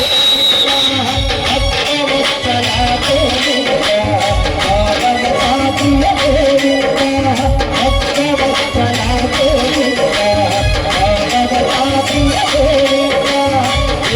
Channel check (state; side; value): identical; both; correlation 1.00